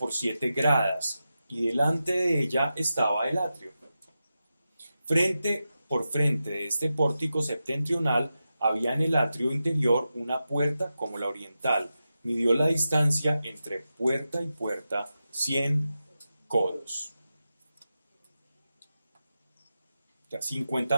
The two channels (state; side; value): inverted; both; correlation -0.91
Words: 7 gradas, y delante de ella estaba el atrio. Por frente de este pórtico septentrional había en el atrio interior una puerta como la oriental. Midió la distancia entre puerta y puerta 100 codos. O sea,